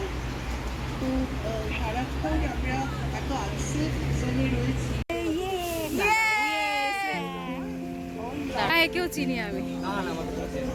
কেউ চিনি আমি?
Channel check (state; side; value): identical; both; correlation 1.00